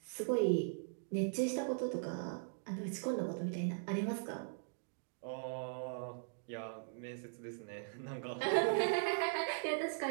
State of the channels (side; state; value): left; silent; digital silence